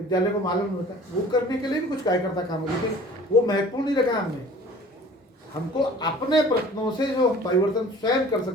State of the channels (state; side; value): normal; both; correlation 0.47